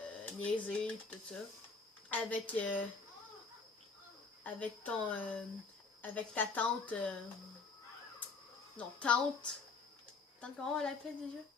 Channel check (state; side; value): quieter; right; 4.3 dB